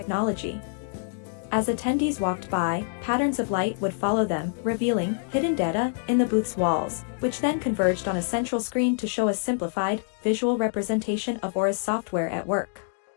As attendees walked by, patterns of light would follow them, revealing hidden data in the booth's walls, which then converged on a central screen to show a simplified, visual representation of Aura's software at work.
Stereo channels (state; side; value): silent; right; digital silence